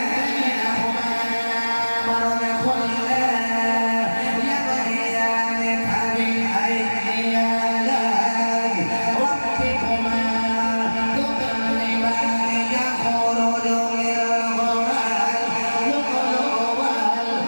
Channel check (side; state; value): both; inverted; correlation -1.00